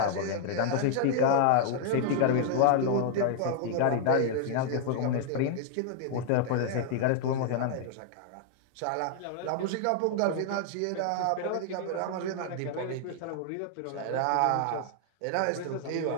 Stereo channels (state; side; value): different; both; correlation 0.00